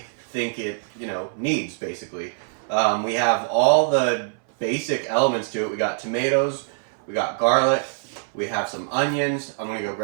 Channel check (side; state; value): left; silent; 60 dB below the other